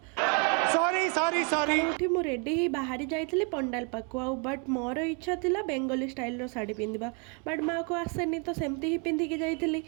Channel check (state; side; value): quieter; left; 35.7 dB